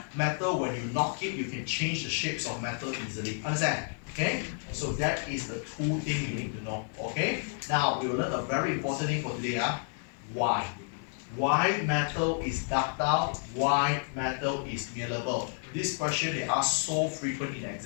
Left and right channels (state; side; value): silent; right; 57 dB below the other